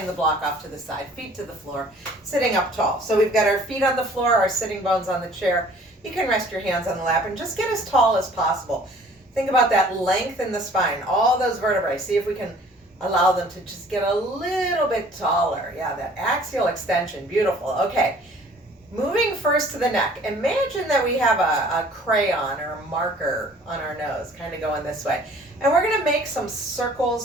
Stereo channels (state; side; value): normal; both; correlation 0.53